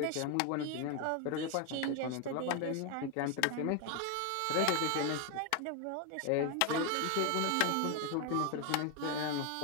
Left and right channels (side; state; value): both; different; correlation 0.01